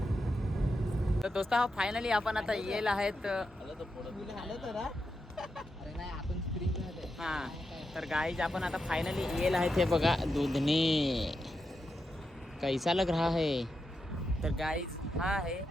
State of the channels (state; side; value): normal; both; correlation 0.87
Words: तर दोस्त फायनली आपण आता येईल आहेत. हा तर गाईज आपण आता फायनली येईल आहेत. हे बघा दुधनी कैसा लग रहा है. तर गाईज हा आहे